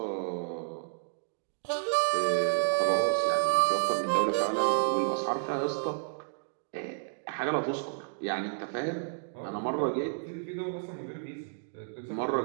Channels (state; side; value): silent; left; digital silence